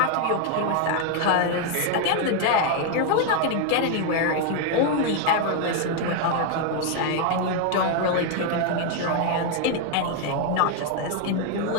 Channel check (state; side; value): different; both; correlation 0.01